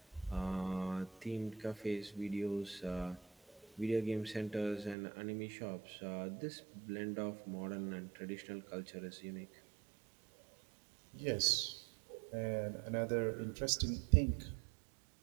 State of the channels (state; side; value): drops out; left; at 5.0 s